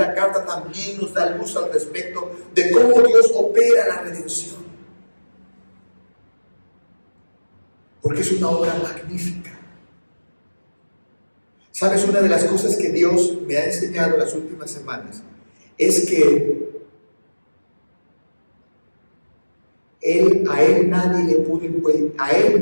carta también nos da luz al respecto de cómo Dios opera la redención. Porque es una obra magnífica. ¿Sabes? Una de las cosas que Dios me ha enseñado las últimas semanas es que a él nadie le pudo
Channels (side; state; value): both; inverted; correlation -1.00